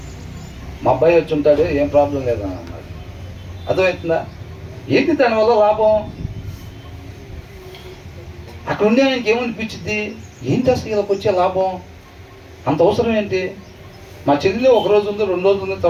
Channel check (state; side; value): identical; both; correlation 1.00